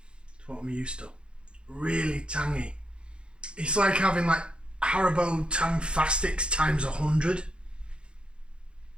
to what I'm used to. Really tangy. It's like having like Haribo Tang Fastics times 100.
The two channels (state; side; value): late; left; 0.054 ms